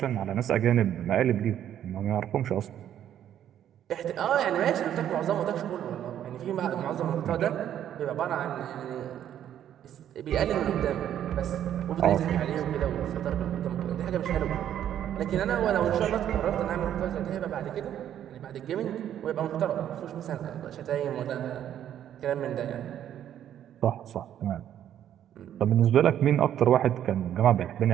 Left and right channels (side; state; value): left; quieter; 10.6 dB